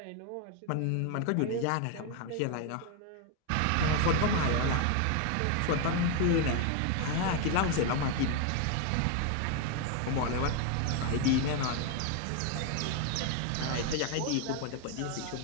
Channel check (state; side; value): different; both; correlation 0.01